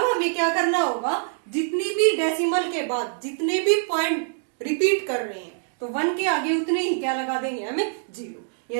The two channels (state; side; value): silent; left; digital silence